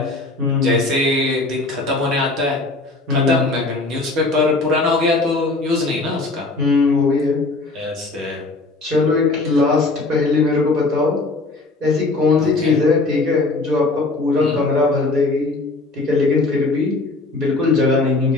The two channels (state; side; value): quieter; right; 3.3 dB